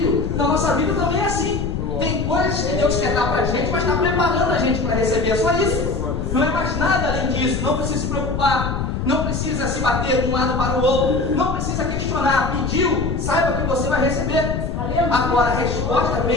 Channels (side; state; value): left; noise; rumble, 2 dB below the sound